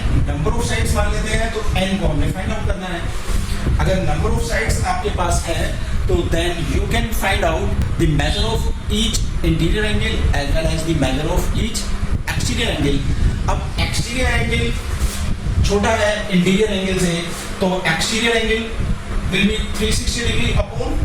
नंबर ऑफ साइड्स मान लेते हैं तो n को हमें फाइंड आउट करना है. अगर नंबर ऑफ साइड्स आपके पास है तो then you can find out the measure of each interior angle as well as the measure of each exterior angle. अब एक्सटीरियर एंगल छोटा है इंटीरियर एंगल से, तो exterior angle will be 360 degree upon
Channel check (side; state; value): both; identical; correlation 1.00